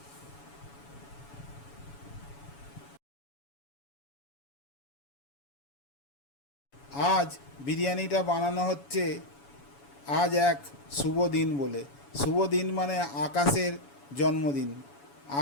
আজ বিরিয়ানিটা বানানো হচ্ছে আজ এক শুভ দিন বলে। শুভ দিন মানে আকাশের জন্মদিন।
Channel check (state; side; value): late; right; 7.1 ms